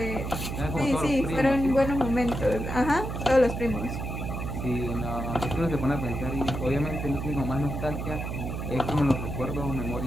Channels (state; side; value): noise; right; hum, 4 dB below the sound